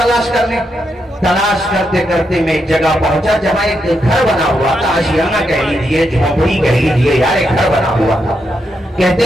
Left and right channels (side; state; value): both; normal; correlation 0.82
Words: کرنے۔ تلاش کرتے کرتے میں ایک جگہ پہنچا جہاں ایک گھر بنا ہوا تھا، آشیانہ کہہ لیجیے، جھونپڑی کہہ لیجیے، یار ایک گھر بنا ہوا تھا۔ کہتے